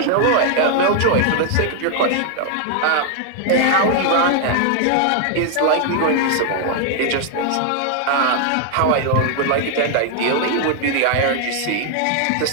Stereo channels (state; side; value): different; both; correlation 0.00